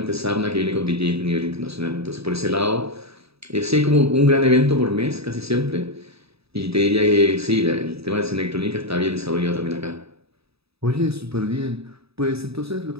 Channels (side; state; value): left; late; 0.77 ms